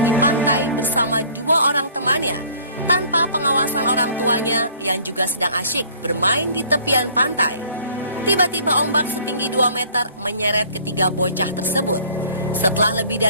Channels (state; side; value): inverted; both; correlation -0.54